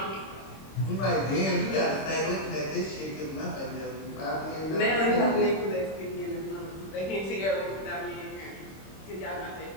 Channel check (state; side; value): late; right; 26 ms